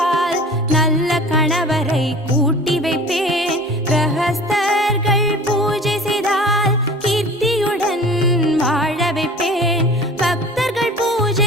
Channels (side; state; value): both; normal; correlation 0.42